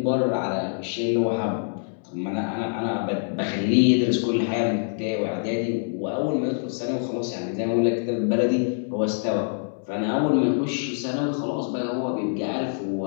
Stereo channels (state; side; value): silent; right; 62 dB below the other